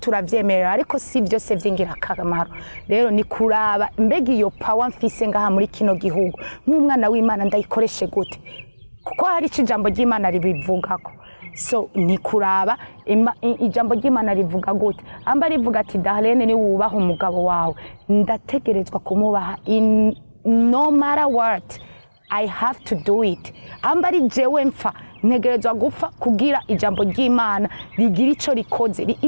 ariko si vyose vy'ingirakamaro. Rero ni kuraba mbega iyo power mfise ngaha muri kino gihugu nk'umwana w'Imana ndayikoreshe gute, kuko hari ijambo ry'Imana ribivugako. So ni kuraba ijambo ry'Imana rivuga gute, amba rivuga ati Darlene ni wubaha umugabo wawe, ndategerezwa kumubaha no matter what, I have to do it. Amba ari jewe mfa ntegerezwa gupfa kugira ijambo ry'Imana rigira ico rikoze.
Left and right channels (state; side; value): inverted; both; correlation -1.00